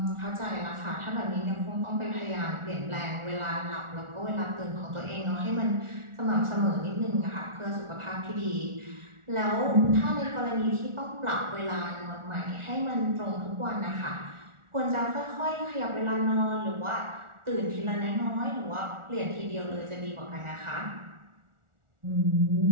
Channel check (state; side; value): late; left; 1.4 ms